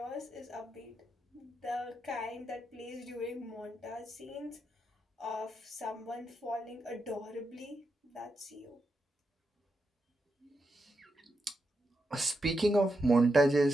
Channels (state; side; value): normal; both; correlation 0.85